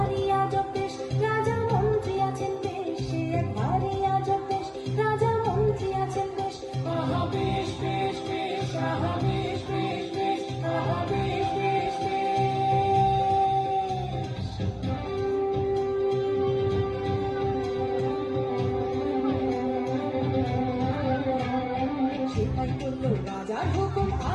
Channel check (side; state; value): both; identical; correlation 1.00